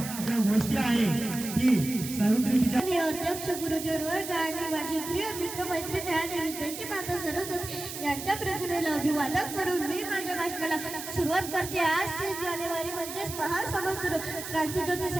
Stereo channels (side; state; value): right; noise; hiss, 9 dB below the sound